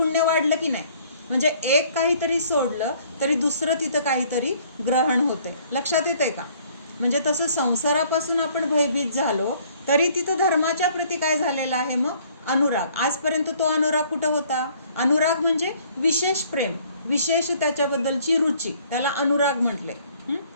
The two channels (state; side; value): inverted; both; correlation -0.59